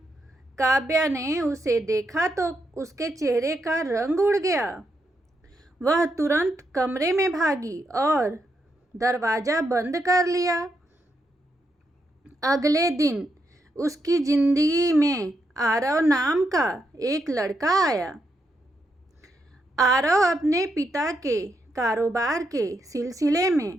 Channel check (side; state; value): both; normal; correlation 0.81